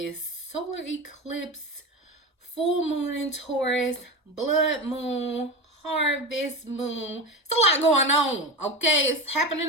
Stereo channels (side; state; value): both; normal; correlation 0.23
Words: solar eclipse, full moon in Taurus, blood moon, harvest moon. It's a lot going on, okay? It's